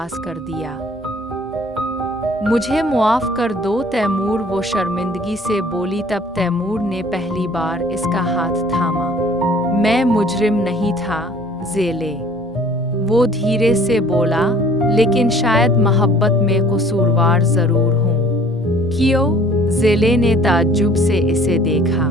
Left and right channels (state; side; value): normal; both; correlation 0.53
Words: कर दिया। मुझे मुआफ़ कर दो तैमूर, वो शर्मिंदगी से बोली। तब तैमूर ने पहली बार इसका हाथ थामा। मैं मुजरिम नहीं था ज़ेले, वो धीरे से बोला, लेकिन शायद मोहब्बत में कसूरवार ज़रूर हूँ। क्यों? ज़ेले ने ताज्जुब से इसे देखा।